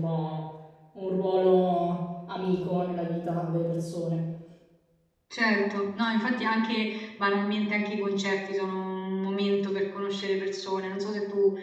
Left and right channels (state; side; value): identical; both; correlation 1.00